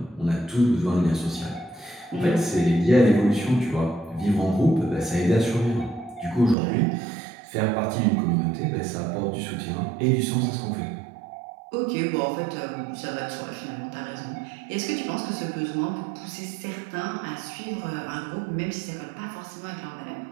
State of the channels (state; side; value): drops out; left; at 6.6 s